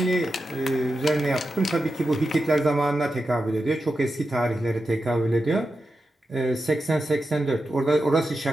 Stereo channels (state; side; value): normal; both; correlation 0.90